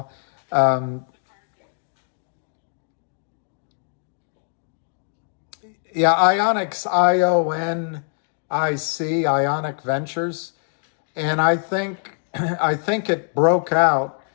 Yeah, Ionics, IONIC, Ionic Ventures. And I think I think it broke out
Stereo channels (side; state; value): right; silent; digital silence